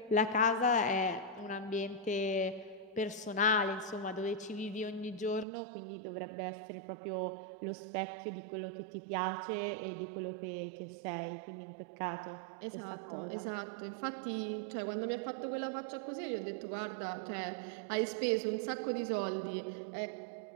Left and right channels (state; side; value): drops out; left; at 5.5 s